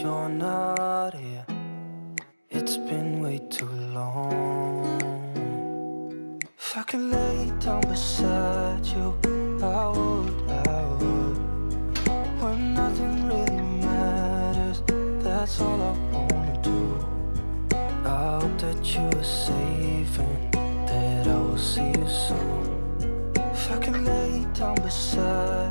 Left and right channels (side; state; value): both; inverted; correlation -1.00